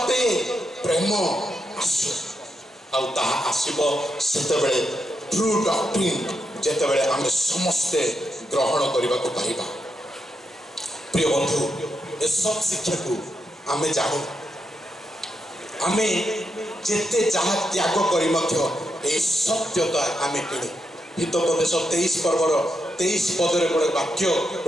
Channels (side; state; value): both; normal; correlation 0.83